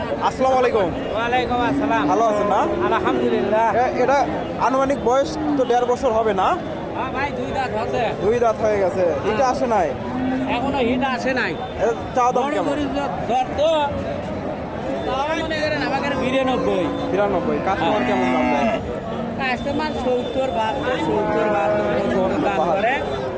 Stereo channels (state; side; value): identical; both; correlation 1.00